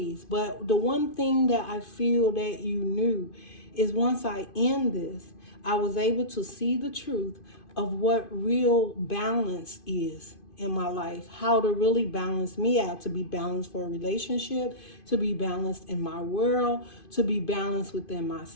But the one thing that I feel that you knew is once I end this, I was able to see the truth of what real balance is in my life, how to really balance me out, to be balanced for a relationship, to be balanced in my world, to be balanced within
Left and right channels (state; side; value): late; right; 2.5 ms